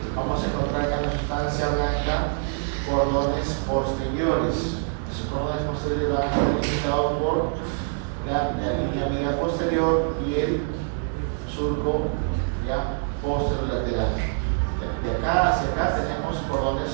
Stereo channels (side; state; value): left; silent; 62 dB below the other